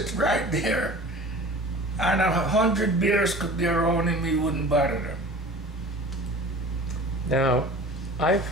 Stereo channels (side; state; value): both; normal; correlation 0.41